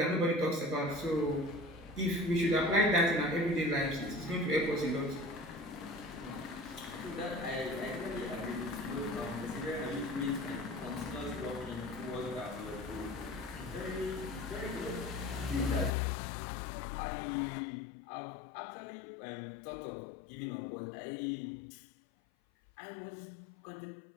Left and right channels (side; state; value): right; drops out; at 15.9 s